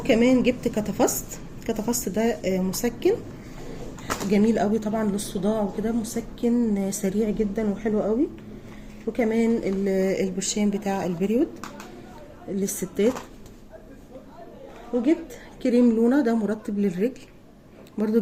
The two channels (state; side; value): identical; both; correlation 1.00